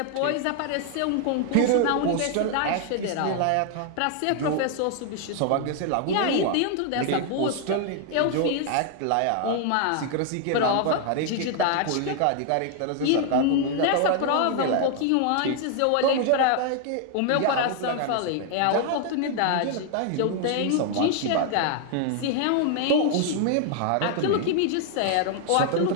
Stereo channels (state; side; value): different; both; correlation 0.00